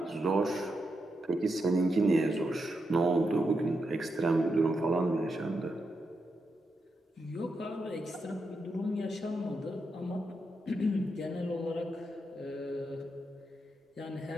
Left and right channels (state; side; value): normal; both; correlation 0.85